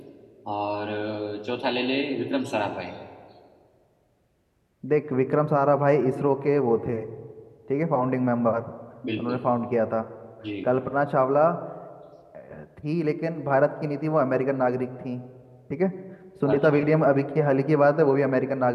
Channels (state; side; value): identical; both; correlation 1.00